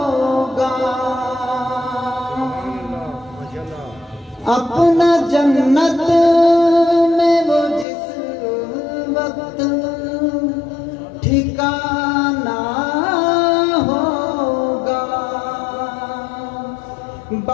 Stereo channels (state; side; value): drops out; right; at 7.9 s